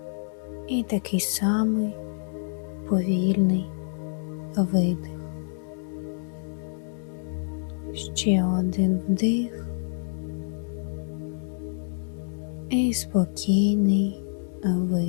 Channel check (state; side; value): silent; right; digital silence